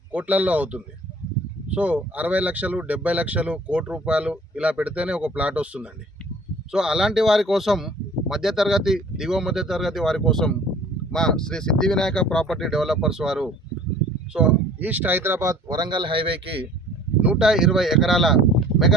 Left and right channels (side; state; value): both; normal; correlation 0.50